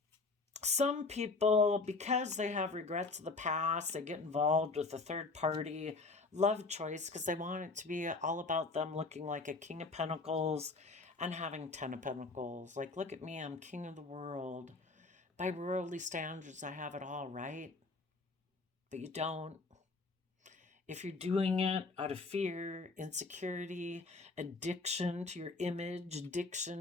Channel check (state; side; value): quieter; right; 3.8 dB